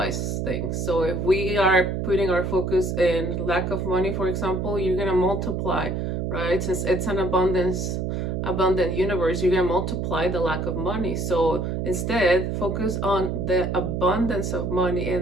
things. So if we are putting our focus in lack of money, for example, you're gonna multiply, right? Since it's an abundant universe, you're gonna multiply the lack of money. So instead, focus on the abundance of money,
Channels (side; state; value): right; noise; hum, 1 dB below the sound